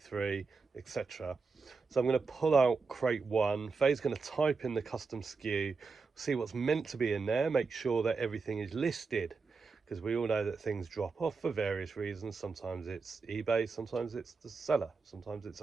etc. So I'm going to pull out crate 1. Faye's going to type in the custom SKU, see what's meant to be in there, make sure that everything is listed. Because we all know that things drop off for various reasons. Sometimes it's eBay, sometimes it's the seller, sometimes it's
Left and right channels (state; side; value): quieter; left; 4.6 dB